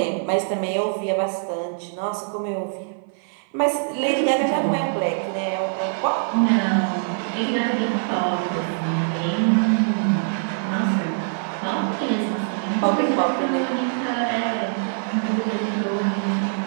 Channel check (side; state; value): left; silent; 57 dB below the other